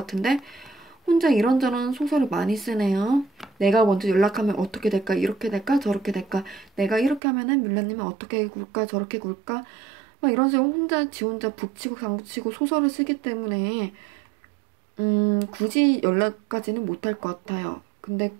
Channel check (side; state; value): left; drops out; at 7.2 s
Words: 혼자 이런저런 소설을 많이 쓰네요. 내가 먼저 연락하면 어떻게 될까? 이렇게 될까? 저렇게 될까? 내가 이렇게 하면은 뮬라님은 어떻게 굴까? 저렇게 굴까? 막 이런 식으로 혼자 지 혼자 북치고 장구치고 소설을 쓰기 때문에 굳이 연락까지는 못할 것 같아요. 근데